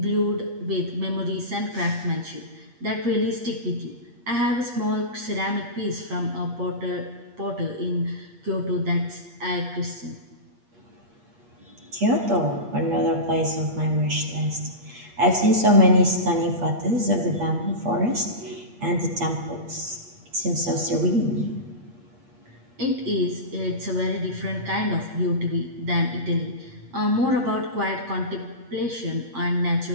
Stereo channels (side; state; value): left; late; 8.5 ms